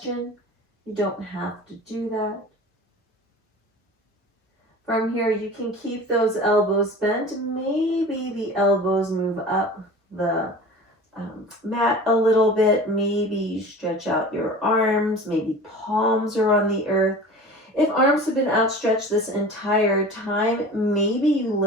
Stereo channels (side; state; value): both; normal; correlation 0.38